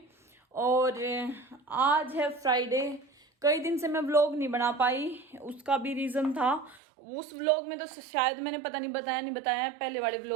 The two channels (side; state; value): left; drops out; at 6.8 s